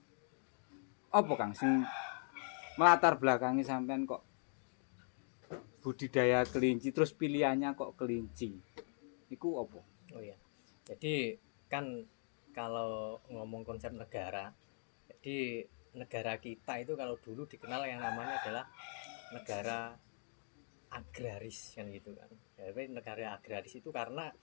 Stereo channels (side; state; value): right; silent; 50 dB below the other